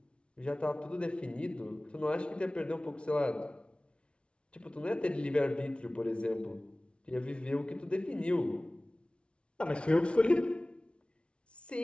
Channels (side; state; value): right; late; 0.059 ms